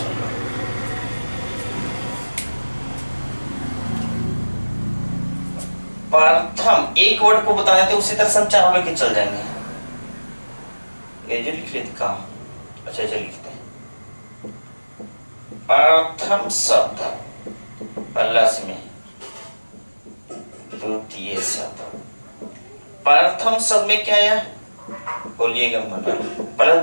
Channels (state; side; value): inverted; both; correlation -1.00